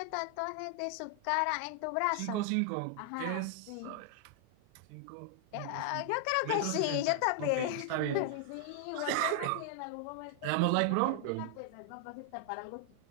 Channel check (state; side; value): different; both; correlation 0.00